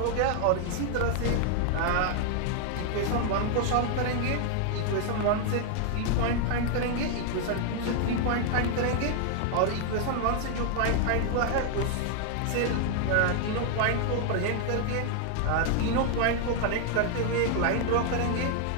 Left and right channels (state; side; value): different; both; correlation 0.00